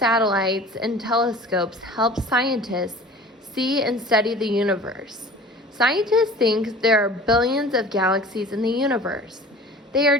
and telescopes help scientists see and study the universe. Scientists think there are billions of galaxies in the universe. They are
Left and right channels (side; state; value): both; normal; correlation 0.42